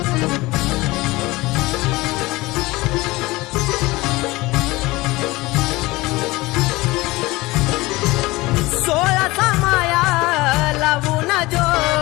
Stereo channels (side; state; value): right; quieter; 20.9 dB